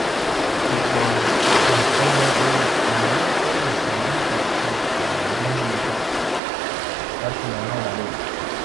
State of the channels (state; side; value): drops out; left; at 6.4 s